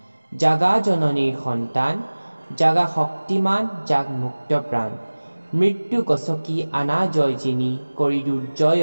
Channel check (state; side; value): inverted; both; correlation -1.00